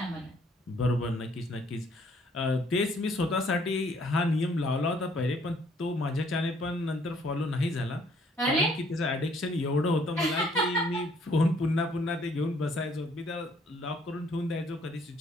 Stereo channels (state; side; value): normal; both; correlation 0.63